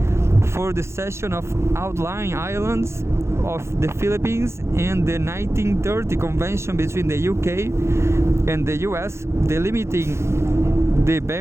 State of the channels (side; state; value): left; late; 0.13 ms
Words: for the cession of outlying islands of the Philippines, and the 1930 Convention between the UK and the US delimiting the